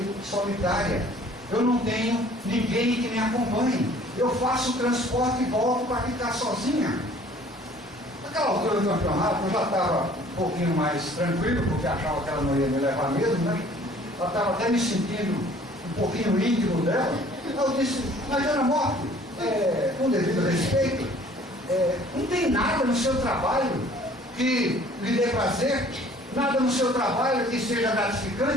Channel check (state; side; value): normal; both; correlation 0.53